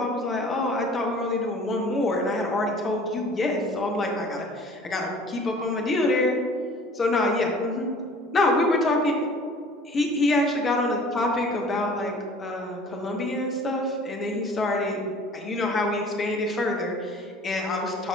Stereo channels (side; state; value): both; normal; correlation 0.48